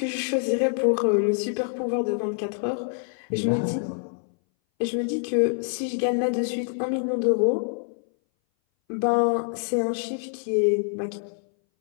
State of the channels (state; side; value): silent; right; 59 dB below the other